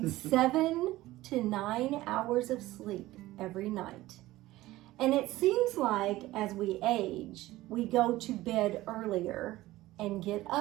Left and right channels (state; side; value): quieter; left; 17.1 dB